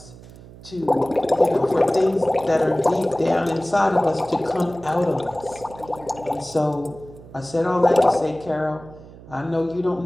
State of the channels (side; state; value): right; noise; hum, 19 dB below the sound